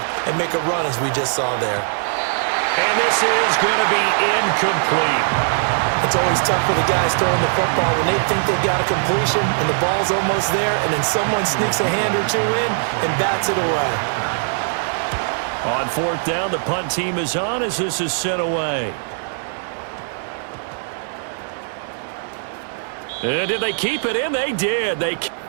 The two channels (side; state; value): left; silent; 62 dB below the other